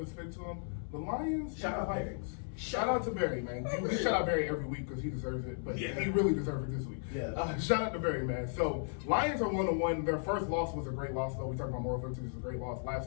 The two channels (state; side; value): silent; right; 54 dB below the other